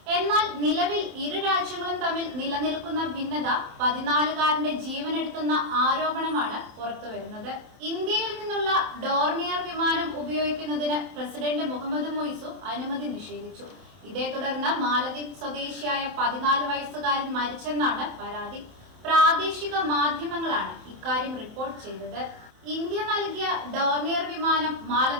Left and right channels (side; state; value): left; late; 27 ms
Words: എന്നാൽ നിലവിൽ ഇരു രാജ്യങ്ങളും തമ്മിൽ നിലനിൽക്കുന്ന ഭിന്നത 14കാരന്റെ ജീവനെടുത്തുന്ന ആരോപണമാണ് പുറത്തുവരുന്നത്. ഇന്ത്യയിൽ നിന്നുള്ള ഡോർണിയർ വിമാനം ഉപയോഗിക്കുന്നതിന് പ്രസിഡന്റ് മുഹമ്മദ് മൊയ്സു അനുമതി നിഷേധിച്ചു. ഇതേ തുടർന്ന് മാലദ്വീപ് സ്വദേശിയായ 14 വയസ്സുകാരൻ മരിച്ചെന്നാണ് പരാതി. പ്രാദേശിക മാധ്യമങ്ങളാണ് ഇക്കാര്യം റിപ്പോർട്ട് ചെയ്തത്. ഇന്ത്യ നൽകിയ ഡോർണിയർ വിമാനം